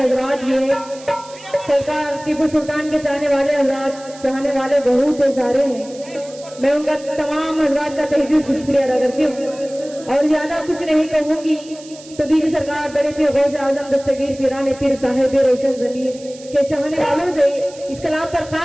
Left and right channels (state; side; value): noise; right; hiss, 20 dB below the sound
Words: भी हैं। सरकार टीपू सुल्तान के चाहने वाले हजरात, चाहने वाले बहुत सारे हैं। मैं उनका तमाम हजरात का तहे दिल से शुक्रिया अदा करती हूँ और ज्यादा कुछ नहीं कहूंगी। तो बीजी सरकार बड़े पीर गौसे आजम दस्तगीर पीराने पीर साहिब रोशन जमीर के चाहने वालों से इस कलाम पर